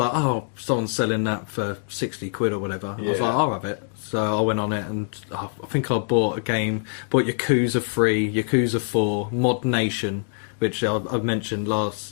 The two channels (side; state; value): right; silent; 62 dB below the other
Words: oh, someone's selling that for 60 quid or whatever. I was Yeah. like, I'll have it. So I went on it, and I think I bought Yakuza 3, Yakuza 4, Mod Nation, which I've mentioned